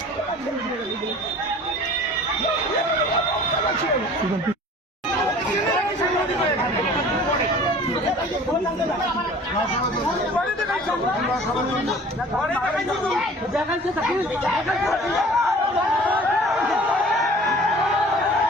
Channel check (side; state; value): both; normal; correlation 0.47